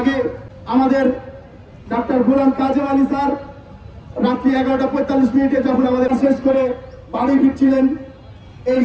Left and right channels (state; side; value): identical; both; correlation 1.00